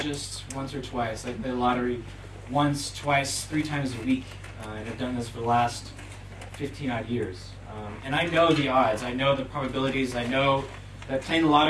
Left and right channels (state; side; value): identical; both; correlation 1.00